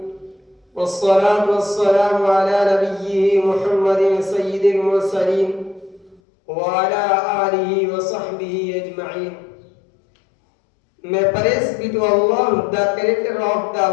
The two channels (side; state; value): right; drops out; at 6.2 s